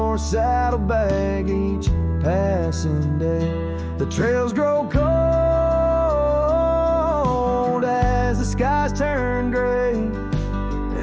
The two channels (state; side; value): identical; both; correlation 1.00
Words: saddlebag each passing day. The trails grow cold as the skies turn gray,